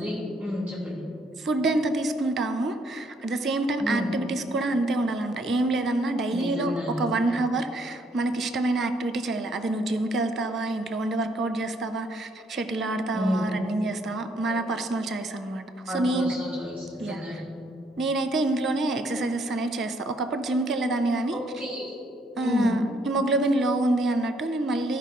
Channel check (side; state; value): both; normal; correlation 0.69